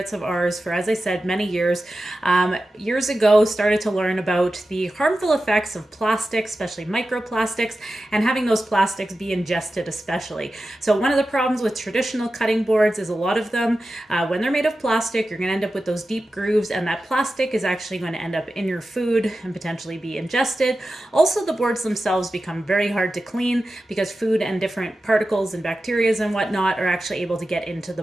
of ours for, as I said, many years. Years ago, started to learn about the harmful effects of plastics, especially microplastics, and having those plastics be ingested especially. So one of the problems with traditional cutting boards is a lot of them, when they're made of plastic, you're going to end up with those deep grooves, and that plastic is actually going to end up in your food and potentially be ingested. Also, the boards themselves become very hard to clean because food and different particles and bacteria and whatnot are actually able to get into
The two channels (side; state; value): both; normal; correlation 0.93